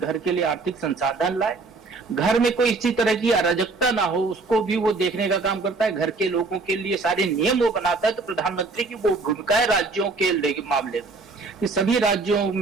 के लिए आर्थिक संसाधन लाए, घर में कोई इसी तरह की अराजकता ना हो उसको भी वो देखने का काम करता है, घर के लोगों के लिए सारे नियम वो बनाता है। तो प्रधानमंत्री की वो भूमिका है राज्यों के मामले में कि सभी राज्यों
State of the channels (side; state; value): left; quieter; 3.7 dB